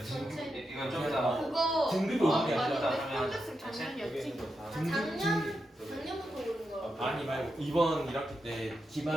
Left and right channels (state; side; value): normal; both; correlation 0.87